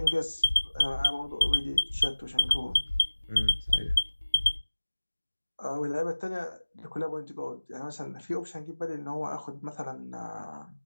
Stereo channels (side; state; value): both; inverted; correlation -1.00